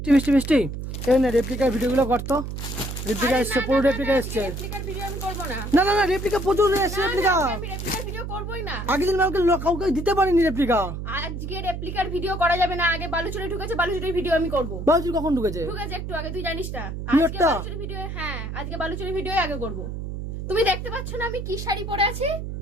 মিষ্টি মিষ্টি এই না রেপ্লিকার ভিডিওগুলো করতো। রেপ্লিকা এসছে, পুরো রেপ্লিকা এসছে। রেপ্লিকার ভিডিও আমি করব না। না না না রেপ্লিকা প্রচুর এসছে। রেপ্লিকা আমি রেপ্লিকার ভিডিও করবই না। আগের দিন আমাকে কাউকে দিতে পারিনি রেপ্লিকা। আজকে রেপ্লিকার ভিডিও করা যাবে না। আগে বালুচুরি ঢুকেছে, বালুচুরির ভিডিও আমি করব। বালুচুরি কখন ঢুকেছে? ঢুকেছে একটু আগে, তুই জানিস না? আজকে বালুচুরি ভিডিও, হ্যাঁ আজকে বালুচুরি ভিডিও আগে করব। তুমি দেখতে পাচ্ছ না আমি কি শাড়ি পরে আছি?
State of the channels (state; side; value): noise; right; hum, 6 dB below the sound